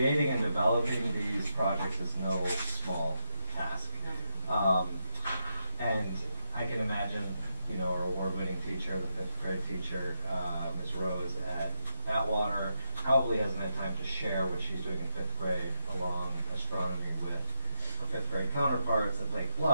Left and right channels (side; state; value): both; inverted; correlation -0.80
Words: and developing these projects is no small task. And I can imagine, our award-winning teacher, the 5th grade teacher, Ms. Rose at Atwater, probably hasn't had time to share what she's doing in 5th grade along astronomy with her 5th grade counterparts at Lake